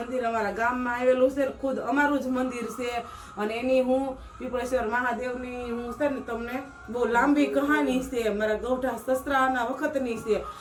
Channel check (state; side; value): identical; both; correlation 1.00